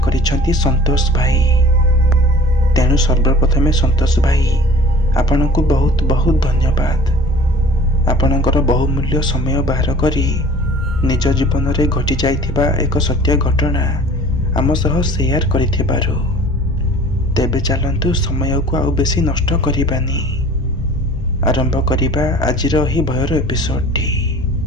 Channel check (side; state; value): both; normal; correlation 0.46